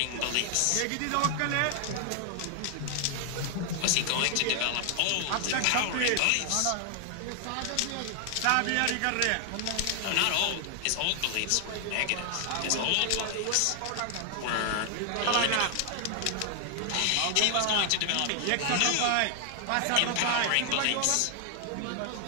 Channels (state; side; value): different; both; correlation 0.00